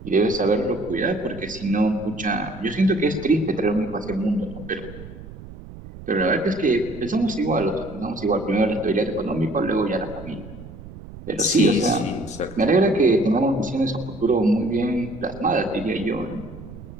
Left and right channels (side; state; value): right; noise; rumble, 15 dB below the sound